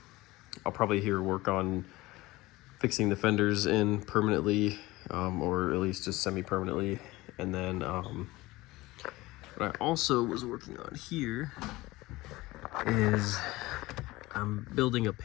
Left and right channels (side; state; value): right; quieter; 19.7 dB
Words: probably here work on fixing the fenders in permanently, or at least just semi-permanently. And then what I also was working on here is I'm building a